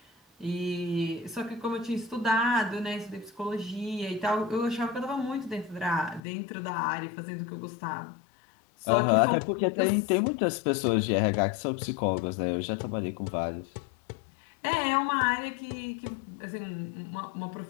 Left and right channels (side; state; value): right; drops out; at 6.2 s